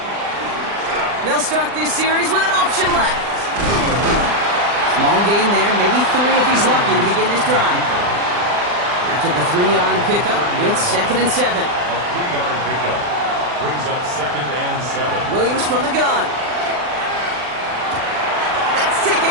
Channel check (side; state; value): left; late; 40 ms